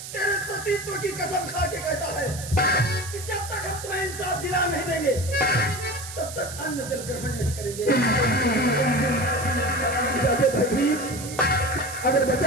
तेरे सतीत्व की कसम खा के कहता है कि जब तक हम तुम्हें इंसाफ दिला नहीं देंगे तब तक अन्न जल ग्रहण नहीं करेंगे। जाके भैभीर, अगर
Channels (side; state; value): right; noise; hiss, 11 dB below the sound